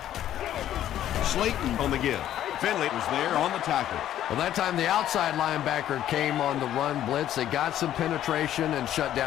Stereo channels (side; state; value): right; quieter; 11.8 dB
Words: Slayton on the give. Finley was there on the tackle. Well, that time the outside linebacker came on the run blitz. They got some penetration and shut